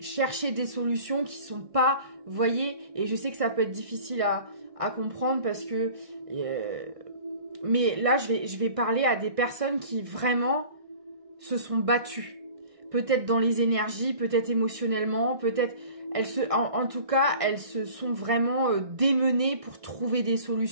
des solutions, qui sont pas, vous voyez, et je sais que ça peut être difficile à comprendre parce que, mais là, je vais parler à des personnes qui vraiment se sont battues. Peut-être dans les énergies, peut-être émotionnellement, peut-être, en tout cas, elles se sont vraiment démenées pour trouver des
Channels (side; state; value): left; late; 1.6 ms